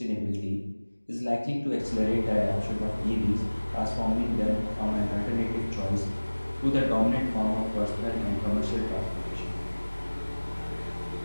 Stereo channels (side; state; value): both; inverted; correlation -1.00